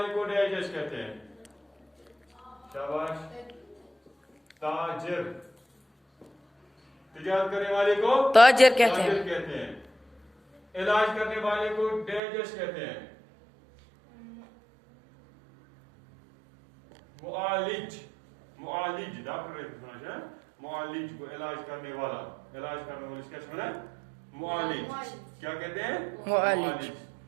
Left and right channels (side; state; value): left; drops out; at 12.2 s